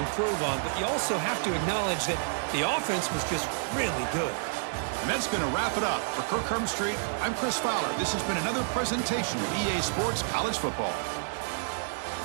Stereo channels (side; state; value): left; silent; digital silence